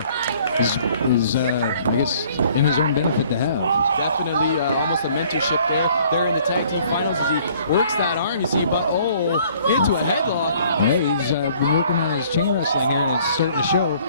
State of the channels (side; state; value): both; inverted; correlation -0.58